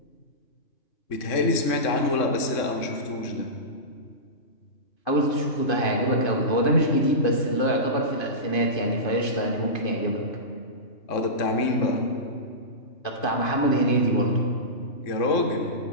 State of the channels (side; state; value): right; late; 3.6 ms